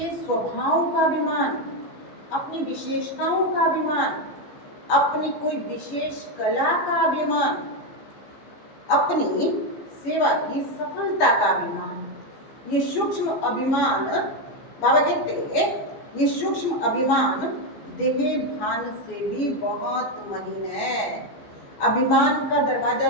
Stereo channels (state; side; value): late; right; 14 ms